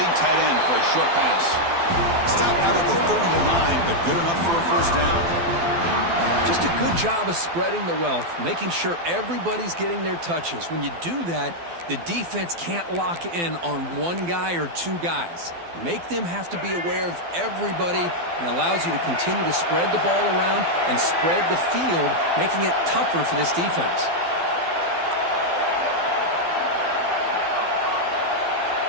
tight end for a short pass. Stop out at the 39, but good enough for a first down. Just a good job of spreading the wealth, making sure everybody's getting their touches. When you do that, the defense can't lock in on one guy or 2 guys. Make them have to be aware of everybody, and allows you to continue to spread the ball around and spread the field, making it tougher for this defense.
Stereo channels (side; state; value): left; late; 12 ms